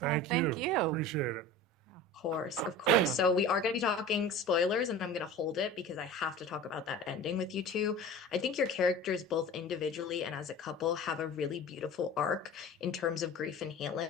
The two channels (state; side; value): normal; both; correlation 0.36